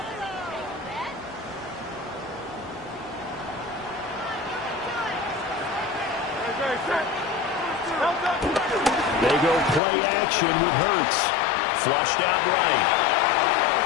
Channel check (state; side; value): drops out; right; at 9.8 s